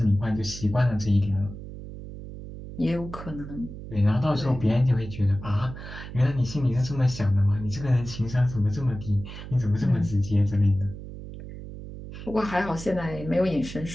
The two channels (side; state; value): right; noise; hum, 11 dB below the sound